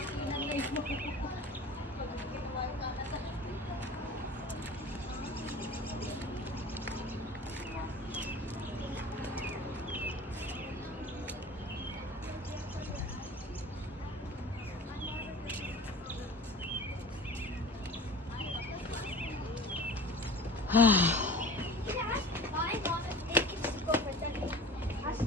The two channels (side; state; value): both; normal; correlation 0.40